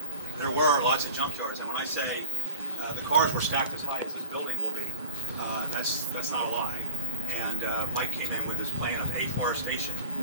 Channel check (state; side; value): inverted; both; correlation -0.34